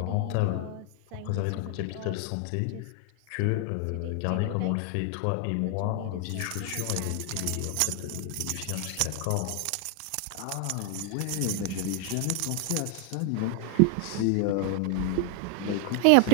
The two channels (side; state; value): both; different; correlation 0.00